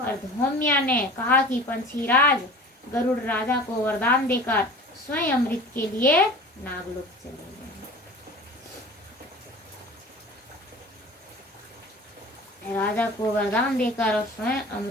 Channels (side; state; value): both; normal; correlation 0.40